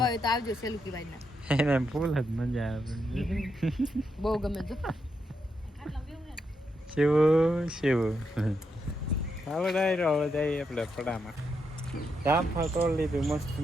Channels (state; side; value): normal; both; correlation 0.82